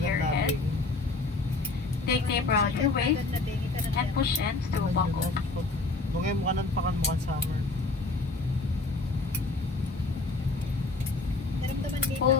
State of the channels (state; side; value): quieter; right; 3.4 dB